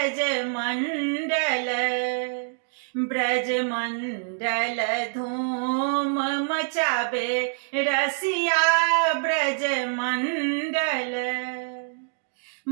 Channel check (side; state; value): left; silent; digital silence